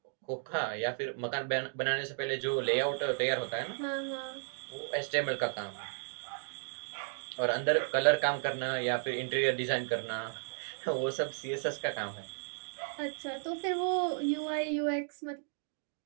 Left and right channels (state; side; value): silent; left; digital silence